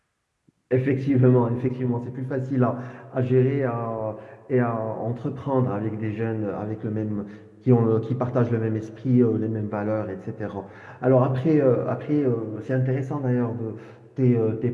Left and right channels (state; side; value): identical; both; correlation 1.00